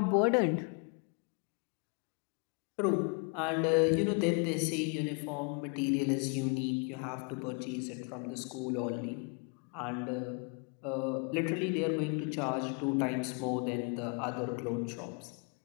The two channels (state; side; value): quieter; right; 34.9 dB